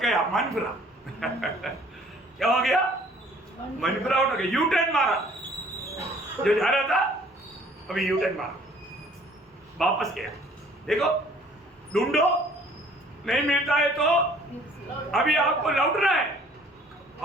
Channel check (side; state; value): both; normal; correlation 0.56